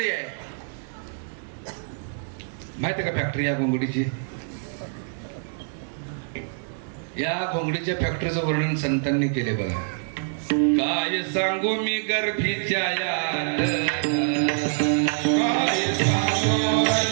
आहे. माहिती का फॅक्टरी या घोंगडीची? या घोंगडीच्या फॅक्टरीचं वर्णन संतांनी केले बघा. काय सांगू मी गर्भीच्या यात, काय सांगू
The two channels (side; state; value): left; silent; digital silence